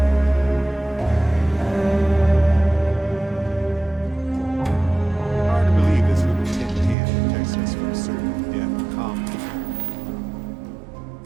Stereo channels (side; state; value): left; drops out; at 7.0 s